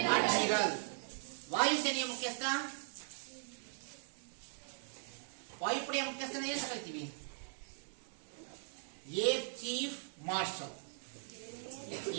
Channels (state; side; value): silent; left; 51 dB below the other